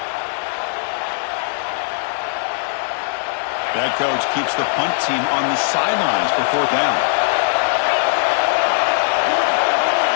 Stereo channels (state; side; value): silent; right; 66 dB below the other